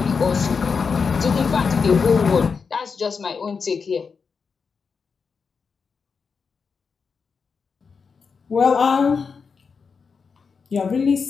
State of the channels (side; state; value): right; quieter; 5.4 dB